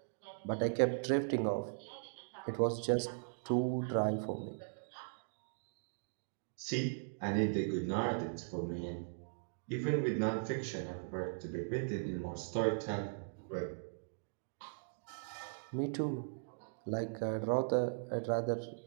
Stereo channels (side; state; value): left; silent; digital silence